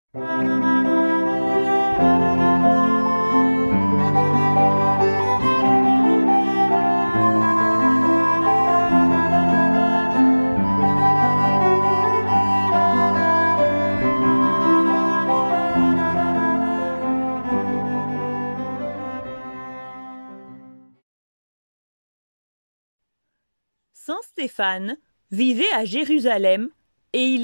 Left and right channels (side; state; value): both; inverted; correlation -1.00